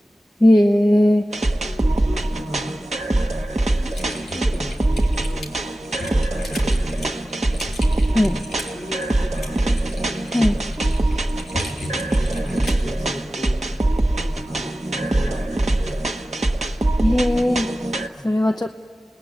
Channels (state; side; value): normal; both; correlation 0.95